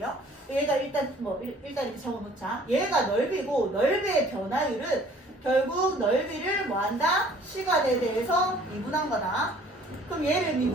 얘가 일단 일단 이렇게 적어 놓자. 얘가 넓이고 넓이의 변화율은 결국 넓이를 뭐 한다? 시간에 대해서 미분한 거다. 그럼 얘를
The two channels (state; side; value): normal; both; correlation 0.54